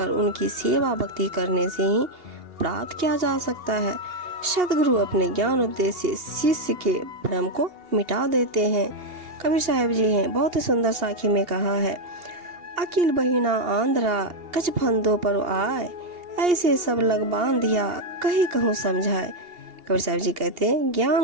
उनकी सेवा भक्ति करने से ही प्राप्त किया जा सकता है। सद्गुरु अपने ज्ञान उपदेश से शिष्य के भ्रम को मिटा देते हैं। कबीर साहब जी हैं, बहुत ही सुंदर साखी में कहा है, अकिल बहिना आंध्रा कछ फंदों पर आए, ऐसे सब लग बांधिया कहीं कहूँ समझाए। कबीर साहब जी कहते हैं,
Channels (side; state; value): left; late; 2.8 ms